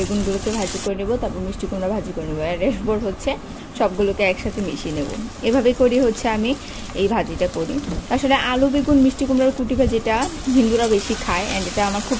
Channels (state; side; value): identical; both; correlation 1.00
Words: ভাজি করে নেব, তারপর মিষ্টি কুমড়া ভাজি করে নেবো, আর এরপর হচ্ছে সবগুলোকে একসাথে মিশিয়ে নেব। এভাবে করি হচ্ছে আমি এই ভাজিটা করি। আসলে আলু বেগুন মিষ্টি কুমড়ার কুটি ভাজিটা হিন্দুরা বেশি খায়, অ্যান্ড এটা আমার খুব